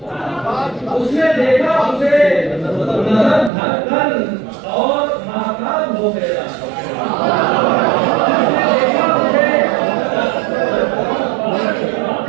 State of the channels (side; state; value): left; drops out; at 3.5 s